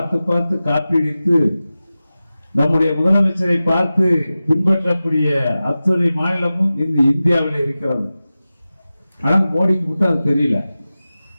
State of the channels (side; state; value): both; inverted; correlation -0.95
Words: பார்த்து காப்பீடித்து நம்முடைய முதலமைச்சரை பார்த்து பின்பற்றக்கூடிய அத்தனை மாநிலமும் இந்த இந்தியாவில் இருக்கிறது. ஆனால் மோடிக்கு மட்டும் அது தெரியல.